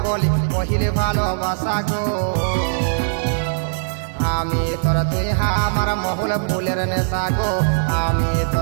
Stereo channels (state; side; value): silent; left; digital silence